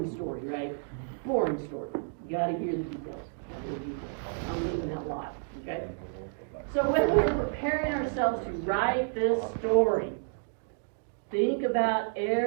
story, right? Boring story. You gotta hear the details. I'm leaving that lot, okay? So when we're preparing ourselves to write this story, think about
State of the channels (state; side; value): silent; left; digital silence